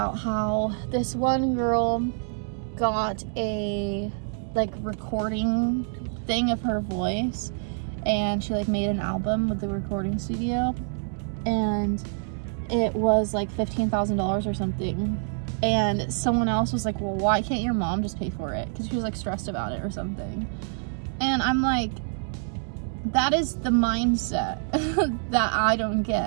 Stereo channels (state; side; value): silent; left; 61 dB below the other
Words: how this one girl got a like recording thing of her voice, and she like made an album with the recording studio, and it was like $15,000 or something. And someone else was like, well, why can't your mom just pay for it? Because she was like stressed about it or something. And I'm like, that is the mindset that I don't